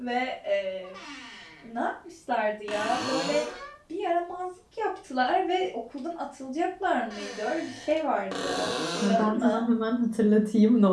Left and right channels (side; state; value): both; identical; correlation 1.00